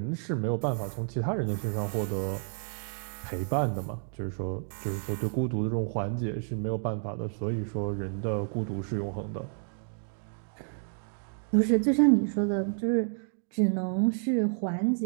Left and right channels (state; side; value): silent; left; 58 dB below the other